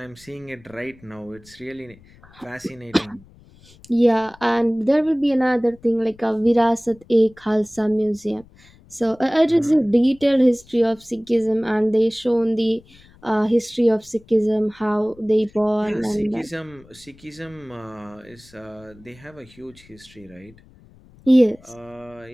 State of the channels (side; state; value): left; noise; rumble, 26 dB below the sound